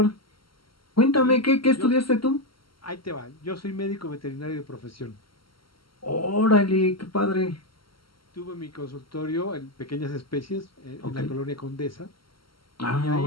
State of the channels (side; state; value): right; late; 0.74 ms